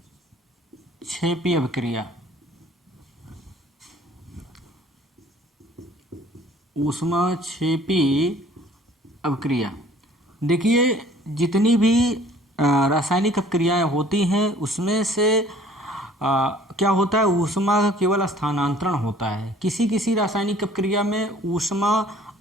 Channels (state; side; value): normal; both; correlation 0.54